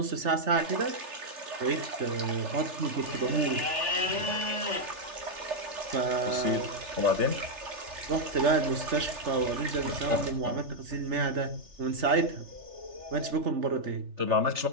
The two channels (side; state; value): left; late; 3.4 ms